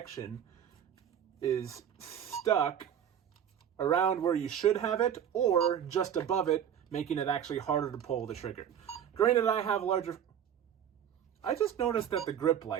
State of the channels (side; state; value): left; quieter; 9.2 dB